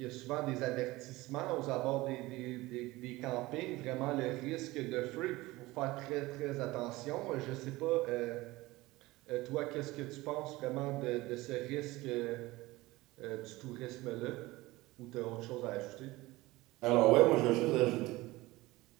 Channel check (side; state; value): left; quieter; 19.8 dB